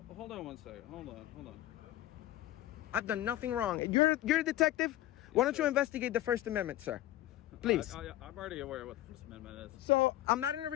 on one second. Hold on. I've done nothing wrong. You're a detective. Why don't you investigate the First Amendment, sir? Please. I'm already aware of what the First Amendment is. So I'm not in a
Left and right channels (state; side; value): quieter; right; 14.7 dB